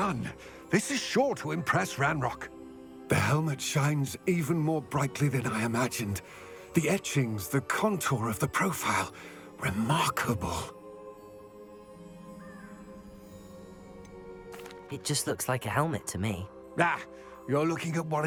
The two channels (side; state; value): both; identical; correlation 1.00